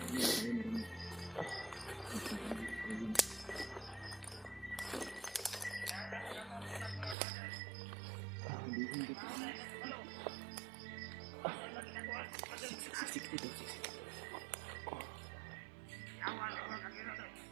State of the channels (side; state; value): left; drops out; at 7.2 s